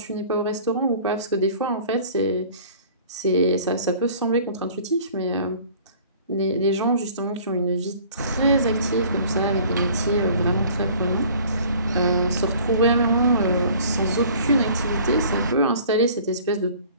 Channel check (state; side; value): inverted; both; correlation -0.51